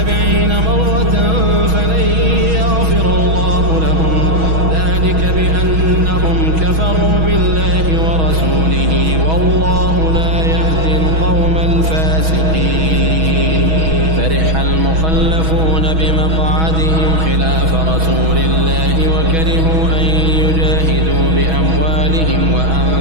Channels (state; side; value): late; left; 6.2 ms